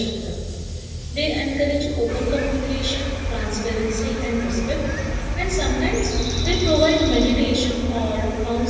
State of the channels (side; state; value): both; identical; correlation 1.00